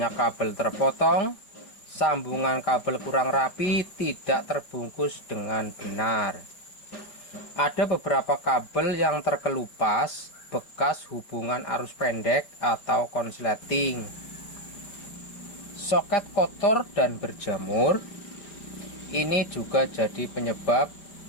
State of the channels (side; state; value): right; late; 4.9 ms